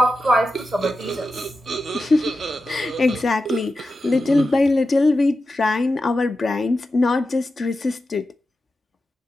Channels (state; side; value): normal; both; correlation 0.91